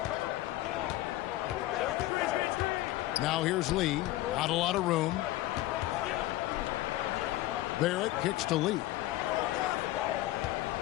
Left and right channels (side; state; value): right; quieter; 16.3 dB